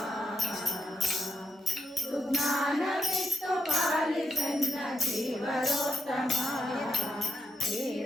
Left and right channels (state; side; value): normal; both; correlation 0.80